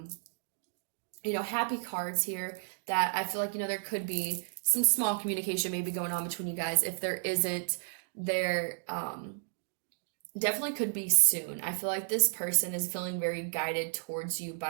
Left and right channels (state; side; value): silent; left; digital silence